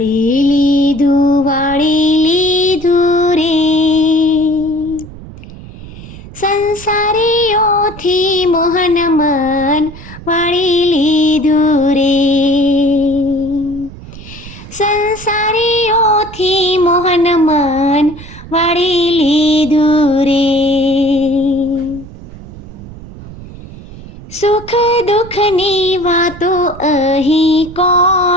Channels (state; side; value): noise; right; rumble, 16 dB below the sound